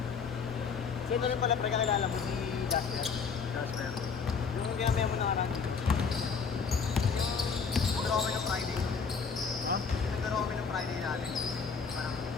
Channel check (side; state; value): right; quieter; 5.6 dB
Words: Ito rin pala, pre, kakilala mo si Jasper. Jasper. Yung ginamaya mo na karang. Nagdaro kami ng Friday. Ha? Nagdaro kami ng Friday natin. Parang,